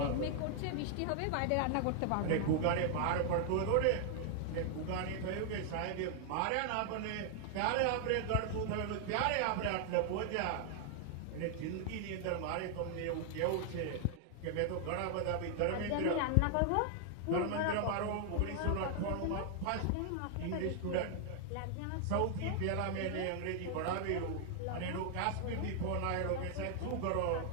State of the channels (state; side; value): different; both; correlation 0.00